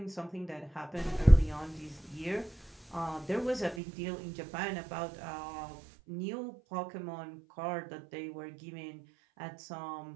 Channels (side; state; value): left; drops out; at 3.8 s